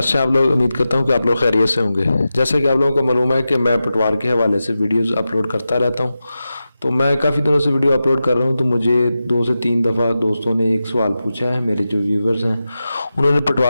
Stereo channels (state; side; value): inverted; both; correlation -0.92